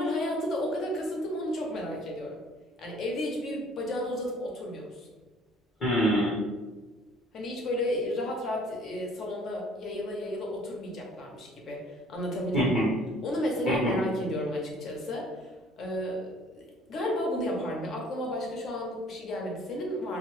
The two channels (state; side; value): normal; both; correlation 0.55